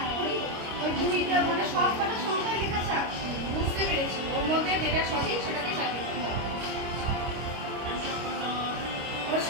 ওই দুইটা মানে সব কটা সংখ্যায় লেখা আছে। বুঝতে পেরেছি, ওর মধ্যে যেটা সঠিক সেটাকে সার্ভে করতে হবে। ওর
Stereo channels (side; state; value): left; late; 25 ms